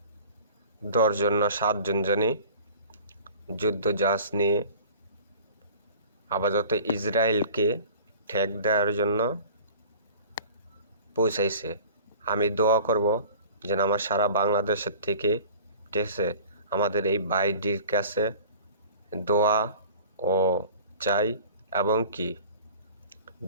জন না 7 জন জানি যুদ্ধ জাহাজ নিয়ে আপাতত ইসরায়েলকে ঠেক দেওয়ার জন্য পৌঁছাইছে। আমি দোয়া করব যেন আমার সারা বাংলাদেশের থেকে, ঠিক আছে, আমাদের এই ভাইটির কাছে দোয়া ও চাই। এবং কি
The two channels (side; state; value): both; inverted; correlation -0.44